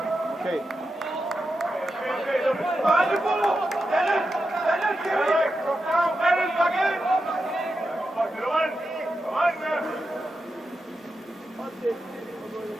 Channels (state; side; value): normal; both; correlation 0.88